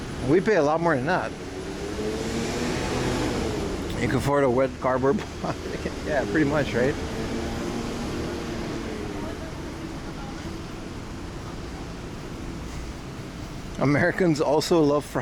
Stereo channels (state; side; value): identical; both; correlation 1.00